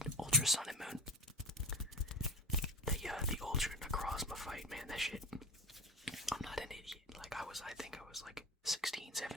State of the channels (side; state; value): both; normal; correlation 0.33